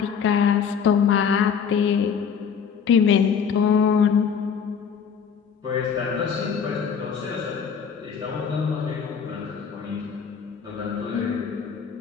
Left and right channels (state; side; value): quieter; right; 6.9 dB